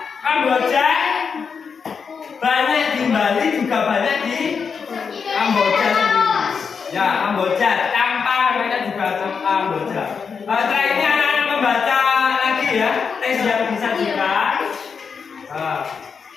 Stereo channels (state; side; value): quieter; right; 5.9 dB